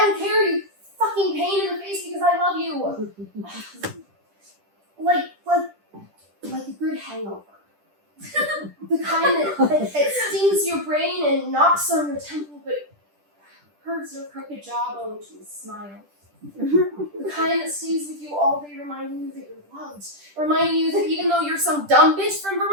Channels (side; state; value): left; late; 10 ms